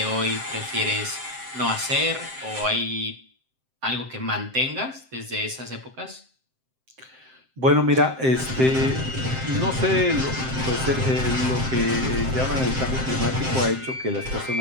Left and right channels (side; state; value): left; late; 7.7 ms